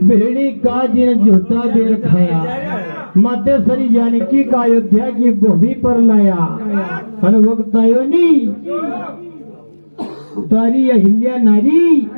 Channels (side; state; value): both; inverted; correlation -1.00